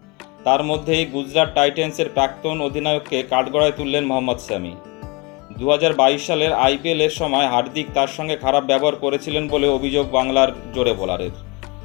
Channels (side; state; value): right; quieter; 27.2 dB